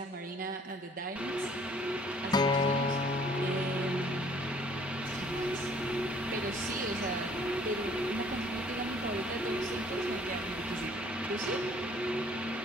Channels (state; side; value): normal; both; correlation 0.58